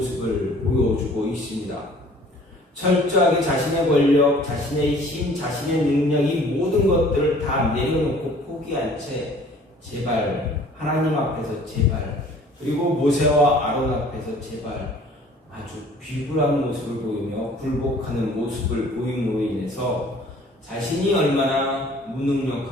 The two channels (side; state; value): both; normal; correlation 0.52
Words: 보여주고 있습니다. 철저하게 자신의 권력, 자신의 힘, 자신의 능력 이 모든 것들을 다 내려놓고 포기한 채 제발 하나님 앞에서 제발 그리고 모세와 아론 앞에서 제발 아주 비굴한 모습을 보이며 굴복하는 모습을 보임으로 인해서 자신이 얼마나